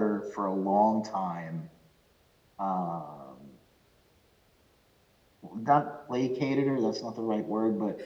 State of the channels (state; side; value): identical; both; correlation 1.00